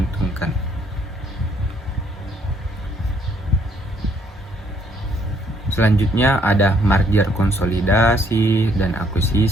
Selanjutnya ada merger konsolidasi dan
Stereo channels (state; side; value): normal; both; correlation 0.67